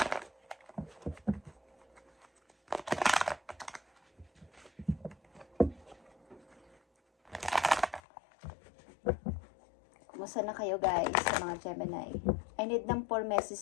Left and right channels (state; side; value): drops out; right; at 8.0 s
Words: Kumusta na kayo guys sa mga Gemini? I need ng 4